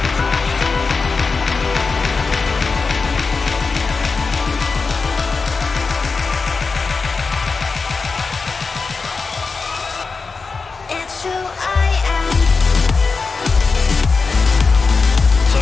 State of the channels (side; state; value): right; quieter; 4.5 dB